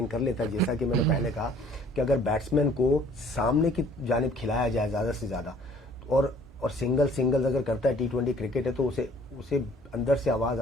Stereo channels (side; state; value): both; normal; correlation 0.55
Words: कर लेता है, जैसा कि मैंने पहले कहा कि अगर बैट्समैन को सामने की जानिब खिलाया जाए ज्यादा से ज्यादा, और सिंगल अगर करता है, T20 क्रिकेट है, तो उसे अंदर से आवाज